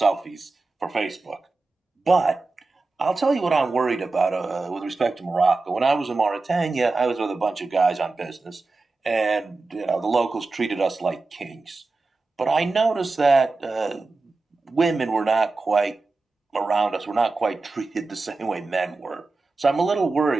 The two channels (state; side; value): quieter; left; 3.6 dB